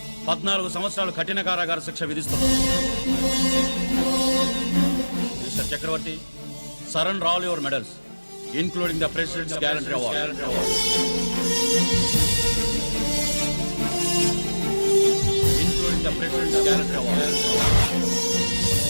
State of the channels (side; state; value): both; inverted; correlation -1.00